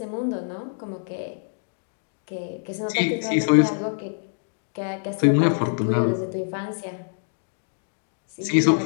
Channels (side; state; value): right; silent; digital silence